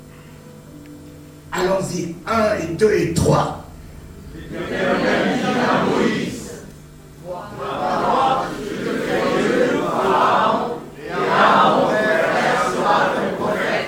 Allons-y, 1 et 2 et 3.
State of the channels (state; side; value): identical; both; correlation 1.00